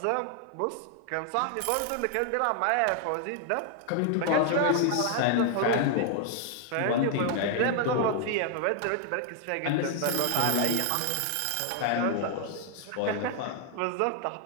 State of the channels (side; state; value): both; different; correlation 0.00